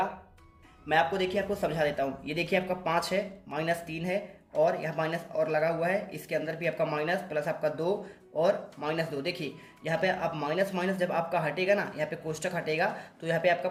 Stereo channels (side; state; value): both; identical; correlation 1.00